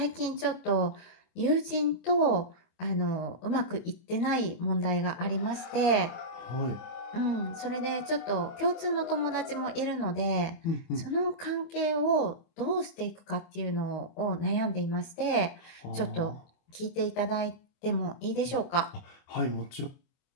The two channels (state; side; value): late; right; 24 ms